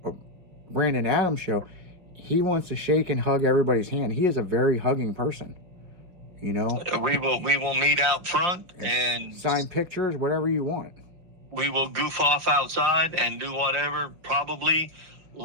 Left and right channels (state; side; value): late; left; 5.6 ms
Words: Brandon Adams show. He wants to shake and hug everybody's hand. He is a very hugging person, We will meet out front and sign pictures, whatever you want. We will goof off outside and do whatever, probably